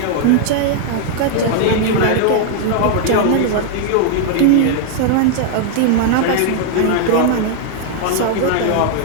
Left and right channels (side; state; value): both; different; correlation 0.00